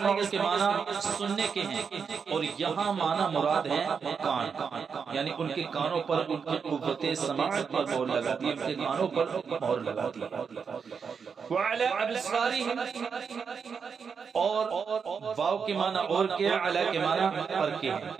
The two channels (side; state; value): left; quieter; 6.1 dB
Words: کے معنی سننے کے ہیں، اور یہاں معنی مراد ہے کان، یعنی ان کے کانوں پر ان کی قوت سماعت پر مہر لگا دی، ان کے کانوں پر مہر لگا دی۔ وعلی ابصارہم، اور واو کے معنی اور کے، علی کے معنی پر کے